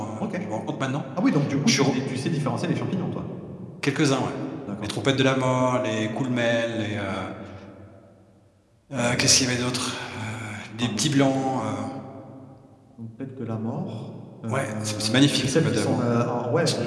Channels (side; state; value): both; identical; correlation 1.00